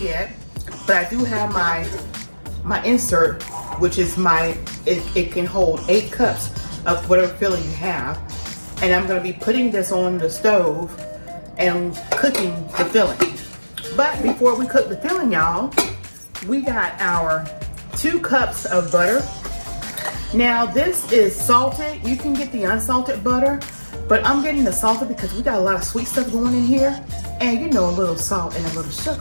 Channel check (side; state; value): both; inverted; correlation -1.00